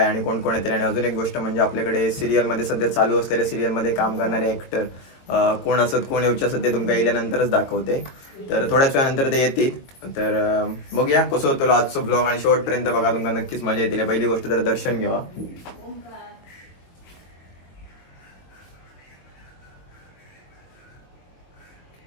आणि कोण कोण येतील. आणि अजून एक गोष्ट म्हणजे आपल्याकडे सिरियलमध्ये सध्या चालू असलेल्या सिरियलमध्ये काम करणारे ऍक्टर कोण असत कोण येऊचे असत ते तुमका येल्यानंतरच दाखवते. तर थोड्याच वेळानंतर ते येतील. तर बघूया कसं होतं आजचं ब्लॉग आणि शेवटपर्यंत बघा, तुमका नक्कीच मजा येतील. पहिली गोष्ट तर दर्शन घ्यावा.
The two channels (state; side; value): late; right; 22 ms